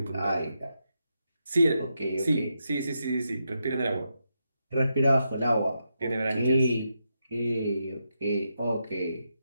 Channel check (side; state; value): both; inverted; correlation -0.84